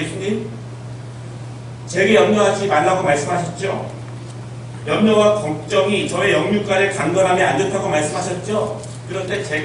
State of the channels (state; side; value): identical; both; correlation 1.00